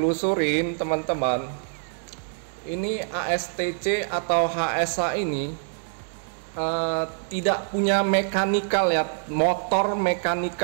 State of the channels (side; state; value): left; silent; 61 dB below the other